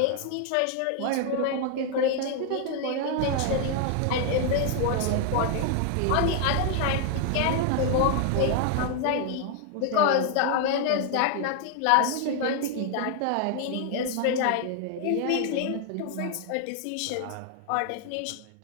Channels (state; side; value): different; both; correlation 0.00